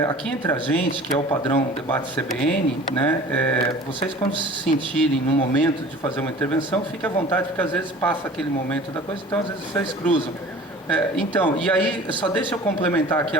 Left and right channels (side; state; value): both; normal; correlation 0.44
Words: entre a gente, que é o padrão debate CBN, né, vocês quando se sentirem no momento de fazer uma intervenção, fiquem à vontade, porque às vezes passa aquele momento da coisa, então às vezes vocês cruzam. Então, e aí, só deixa eu complementar aqui